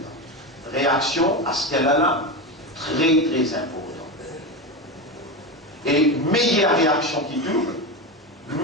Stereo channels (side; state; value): both; normal; correlation 0.19